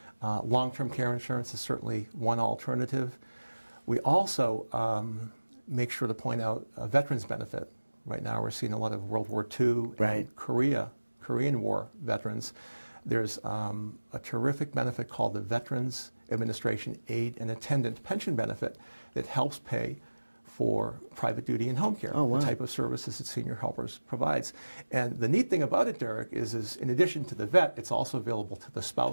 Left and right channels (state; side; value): inverted; both; correlation -1.00